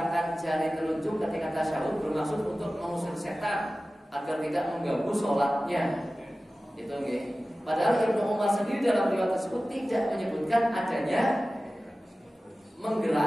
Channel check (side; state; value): both; normal; correlation 0.96